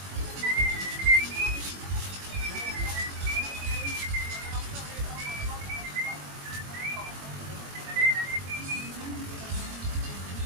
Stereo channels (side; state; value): left; late; 21 ms